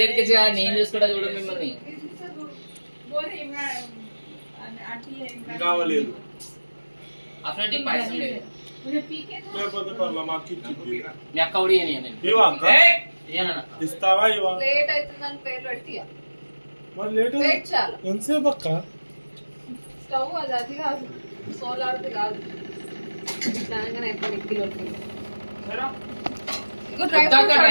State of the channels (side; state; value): both; inverted; correlation -1.00